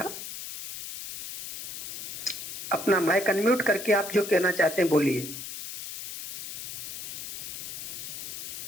अपना माइक अनम्यूट करके आप जो कहना चाहते हैं बोलिए।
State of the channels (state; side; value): noise; left; hiss, 8 dB below the sound